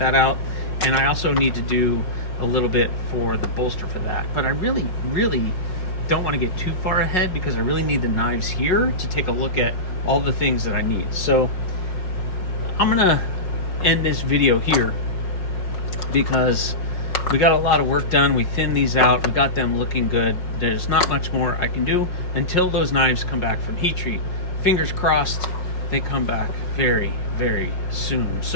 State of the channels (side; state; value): right; late; 5.5 ms